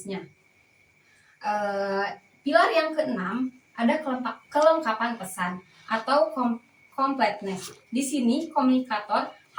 Pilar yang keenam, ada kelengkapan pesan atau completeness. Di sini komunikator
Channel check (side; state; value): both; identical; correlation 1.00